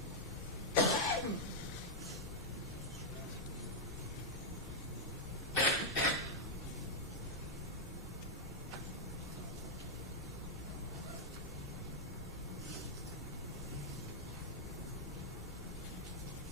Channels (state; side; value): normal; both; correlation -0.04